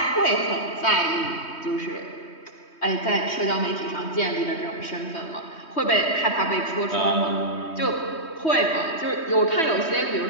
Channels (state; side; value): late; right; 3.2 ms